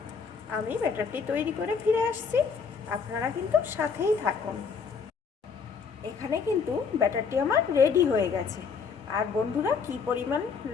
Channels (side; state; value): right; quieter; 5.7 dB